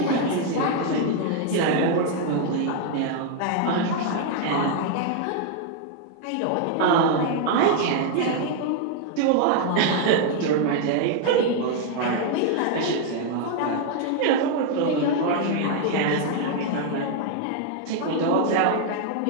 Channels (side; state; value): both; different; correlation 0.00